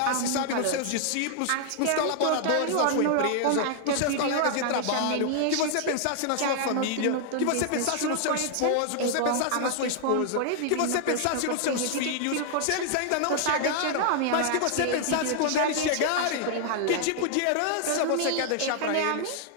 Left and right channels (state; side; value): different; both; correlation 0.00